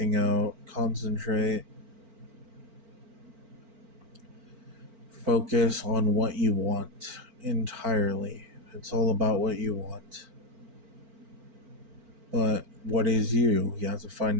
out. Concentrate. Focus on what you want entirely. It's all about what you want. But what is you? You have to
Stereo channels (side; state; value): left; late; 4.4 ms